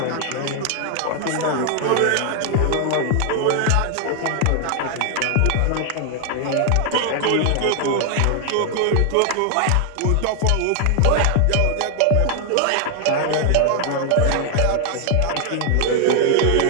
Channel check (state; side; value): different; both; correlation 0.00